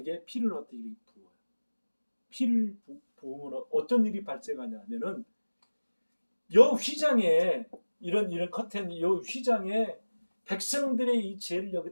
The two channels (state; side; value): inverted; both; correlation -1.00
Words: 피를 어떻게 부어요. 피를 부으면 어떤 일이 발생하냐면은 요 휘장에 이런 커튼 요 휘장에 백성들의 이 죄를